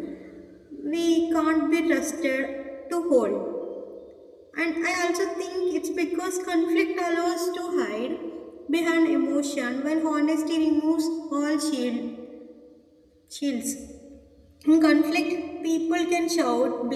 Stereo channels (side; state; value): both; identical; correlation 1.00